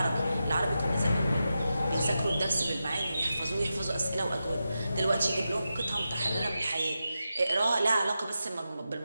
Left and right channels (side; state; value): both; inverted; correlation -0.90